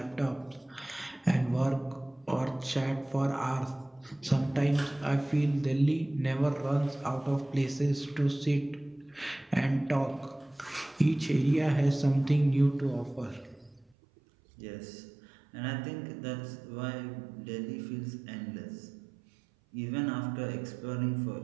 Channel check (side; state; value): left; drops out; at 14.0 s